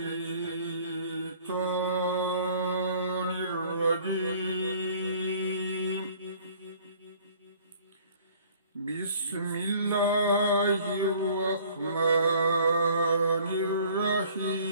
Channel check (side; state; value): both; inverted; correlation -0.54